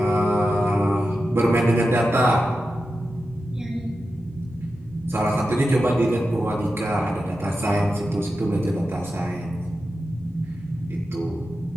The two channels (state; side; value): normal; both; correlation 0.91